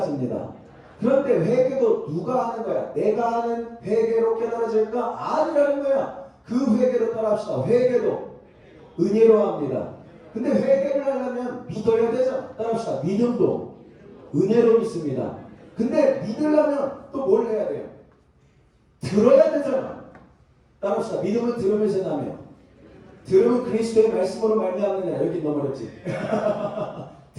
그런데 회개도 누가 하는 거야? 내가 하는 회개로 깨달아질까? 아니라는 거야. 그 회개로 따라합시다. 회개도 은혜로 합니다. 근데 회개를 하려면 믿어야 되잖아. 따라합시다. 믿음도 은혜로 믿습니다. 근데 믿으려면 또 뭘 해야 돼요? 들어야 되잖아. 따라합시다. 믿음은 들으면서 나며 들음은 그리스도의 말씀으로 말미암느냐. 여기 너무 어렵지.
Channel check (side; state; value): both; identical; correlation 1.00